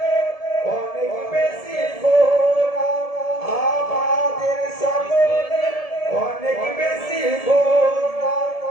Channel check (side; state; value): right; late; 1.7 ms